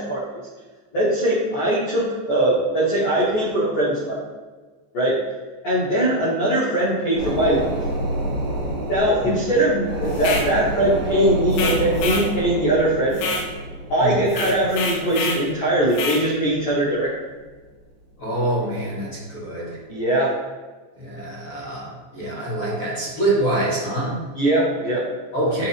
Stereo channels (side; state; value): right; late; 15 ms